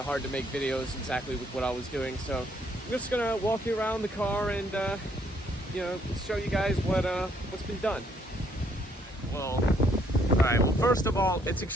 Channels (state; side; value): normal; both; correlation 0.68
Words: hard to make videos exactly with what I was doing. So I'm just going to walk you around the car and show you guys what's been done. Well, alright, well, first of all, it's